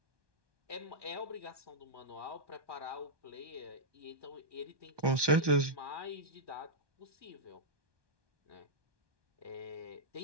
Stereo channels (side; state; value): left; late; 1.2 ms